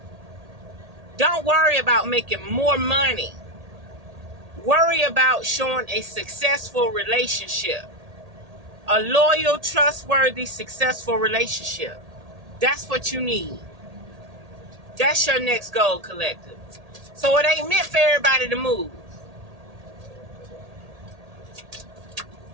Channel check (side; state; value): left; late; 1.8 ms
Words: don't worry about making more money. Worry about showing a successful relationship. A loyal, trustworthy, successful relationship. That's what you need. That's your next goal, collective. So it ain't meant for everybody to move.